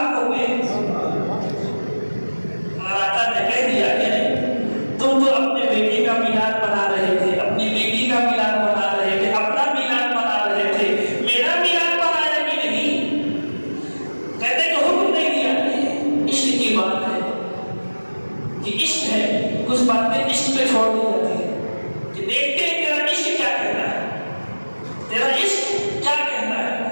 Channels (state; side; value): inverted; both; correlation -1.00